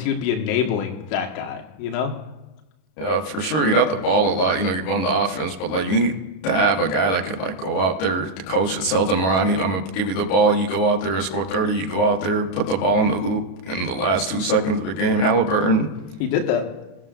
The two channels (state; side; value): late; right; 32 ms